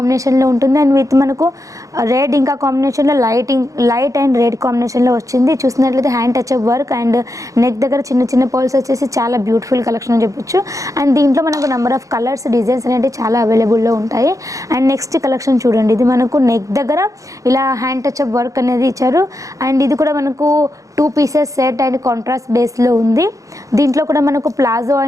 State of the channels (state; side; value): late; left; 0.16 ms